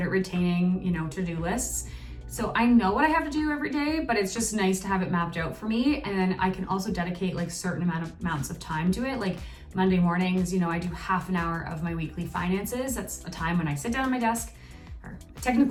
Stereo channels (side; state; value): both; identical; correlation 1.00